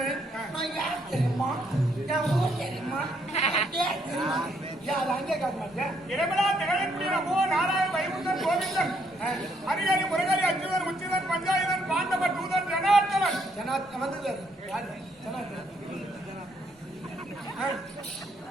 நான் யார் தெரியுமா என் ஊர் தெரியுமா என் பேர் தெரியுமா யார் அங்கே காட்ட மாட்டேன். இரவிழா திகழக்கூடிய நமோ நாராயண வைகுந்தன் கோவிந்தன் ஹரிஹரி முருகரி அச்சுதன் உச்சிதன் பஞ்சாயுதன் பாண்டவ தூதன் ஜனார்த்தவன் ஜனாத் வந்தது யாரு ஜனாத்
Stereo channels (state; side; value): normal; both; correlation 0.72